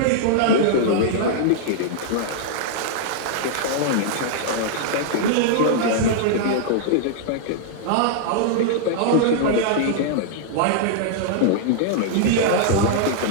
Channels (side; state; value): both; different; correlation -0.01